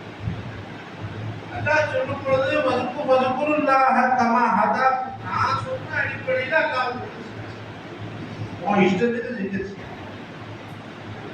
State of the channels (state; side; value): identical; both; correlation 1.00